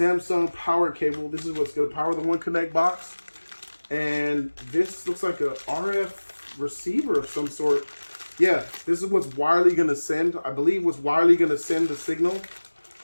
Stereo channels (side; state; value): both; inverted; correlation -1.00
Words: power cable. This is what's going to power the One Connect box. And this looks like a RF receiver of some sort. Yeah, this is what's wirely going to send, I believe what's wirely going to send the signal